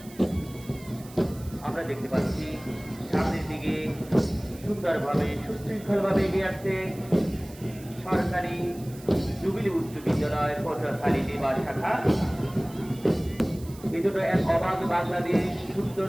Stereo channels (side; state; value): right; noise; hiss, 21 dB below the sound